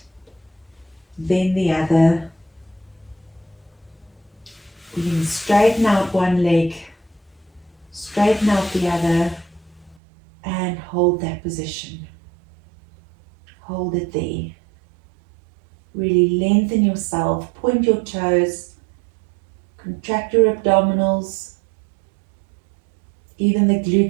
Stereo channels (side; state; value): left; drops out; at 10.0 s